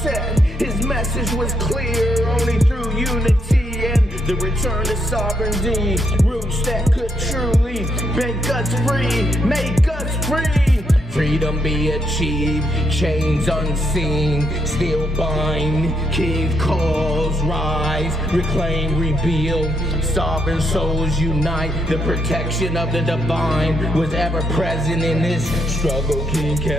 His message was clear, only through unity and the return to sovereignty. Roots that could truly make us free, make us free. Freedom be achieved, chains unseen, still bind. King calls, rise, reclaim, rebuild. Sovereign souls unite, the protection of the divine was ever present in this struggle.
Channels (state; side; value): normal; both; correlation 0.78